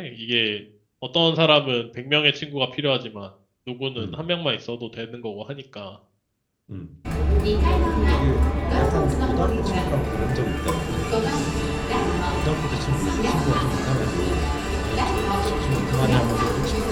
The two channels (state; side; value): identical; both; correlation 1.00